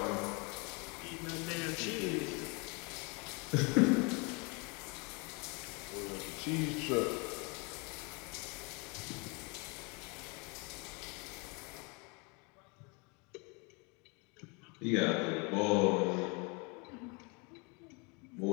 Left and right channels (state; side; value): quieter; right; 30.8 dB